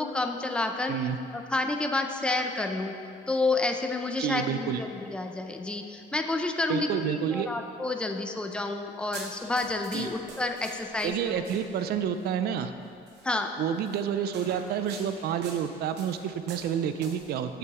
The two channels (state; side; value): normal; both; correlation 0.49